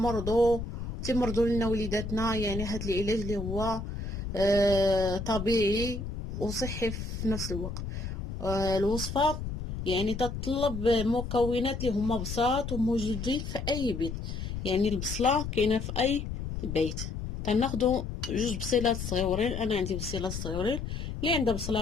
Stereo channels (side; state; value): left; noise; rumble, 6 dB below the sound